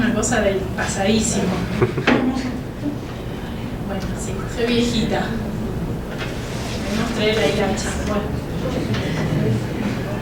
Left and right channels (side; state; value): both; identical; correlation 1.00